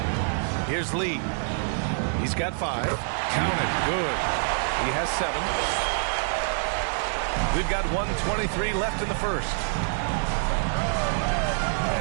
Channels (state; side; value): silent; left; 61 dB below the other